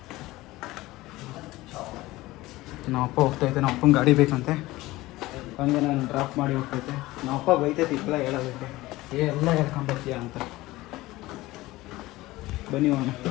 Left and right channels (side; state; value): right; quieter; 18.6 dB